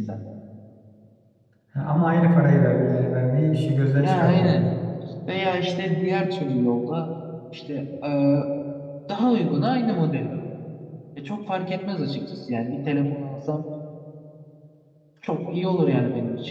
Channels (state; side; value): identical; both; correlation 1.00